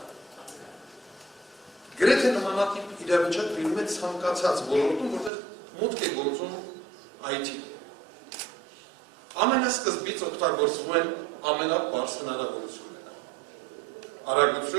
Գրեթե նմանատիպ իրավիճակ լինում է ցանկացած ոլորտում, որտեղ մուտք է գործում IT։ Ամենասկզբից օգտագործվում են ամենաբարձ հնարավորությունները։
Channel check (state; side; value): drops out; left; at 5.3 s